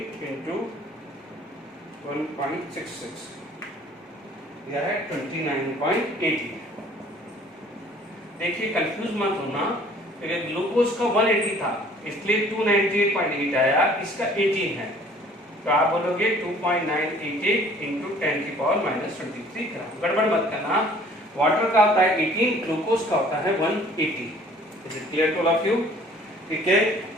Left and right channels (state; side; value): normal; both; correlation 0.54